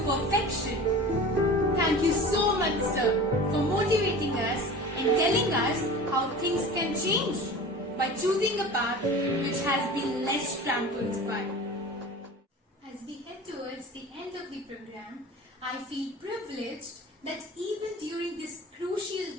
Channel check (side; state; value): both; normal; correlation 0.36